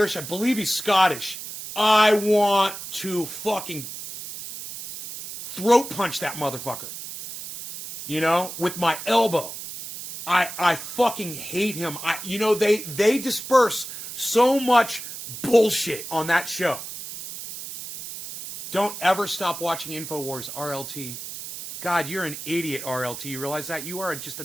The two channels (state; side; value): noise; right; hiss, 10 dB below the sound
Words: I believe he's Scottish. I want to fucking throat punch that motherfucker. You know, with my elbow. I fucking hate him. They disperse so much bullshit on that show. Don't ever stop watching InfoWars, RLT. God, you're an idiot, RLT. You realize that? You are just a